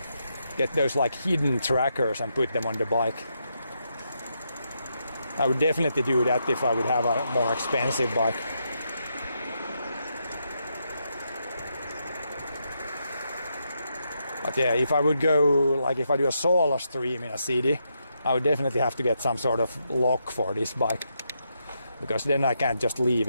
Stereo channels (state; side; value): inverted; both; correlation -0.81